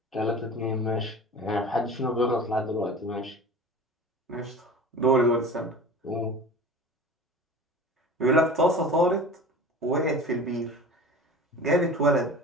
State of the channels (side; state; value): both; normal; correlation 0.37